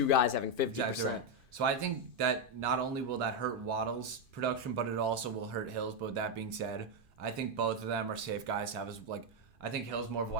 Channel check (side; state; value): left; late; 2.5 ms